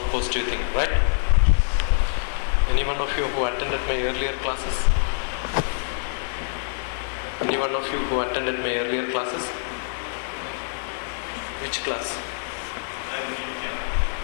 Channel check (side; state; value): right; silent; 62 dB below the other